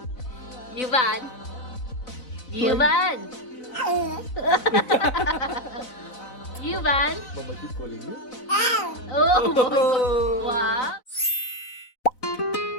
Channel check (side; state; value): right; late; 4.0 ms